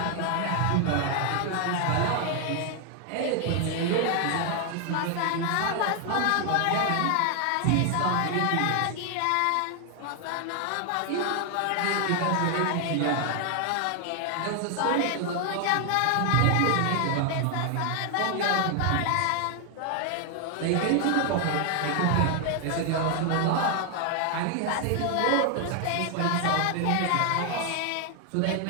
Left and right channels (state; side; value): different; both; correlation 0.00